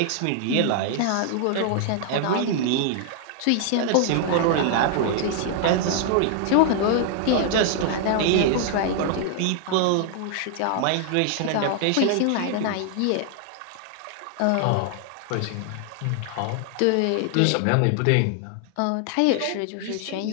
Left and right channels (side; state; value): both; different; correlation 0.00